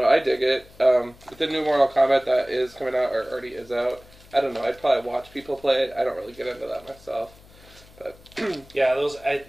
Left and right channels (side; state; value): left; noise; hum, 24 dB below the sound